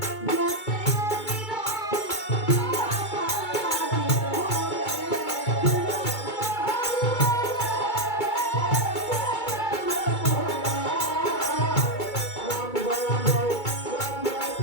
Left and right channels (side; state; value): right; late; 2.2 ms